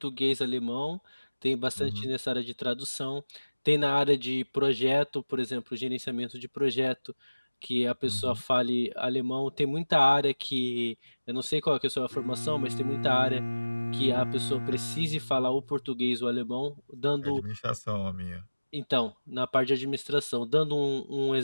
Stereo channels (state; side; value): inverted; both; correlation -1.00